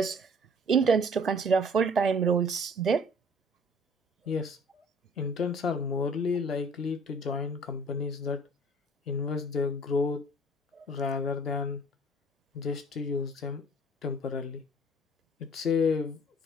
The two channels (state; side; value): normal; both; correlation 0.53